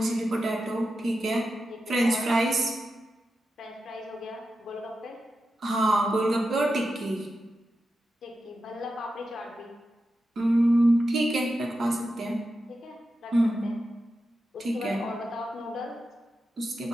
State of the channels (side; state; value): both; normal; correlation 0.90